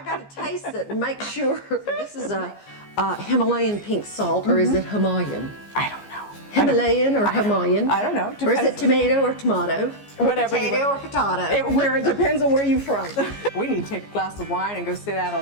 gotta taste it and make sure. This is a Himalayan pink salt, or is it Himalayan? I don't know. Himalayan or Himalayan? I don't know. Or is it Depends. tomato or tomato? Whatever you Potato want. or potato? It depends on where you're from. We need to take a glass of wine and go sit out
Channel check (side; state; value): right; late; 14 ms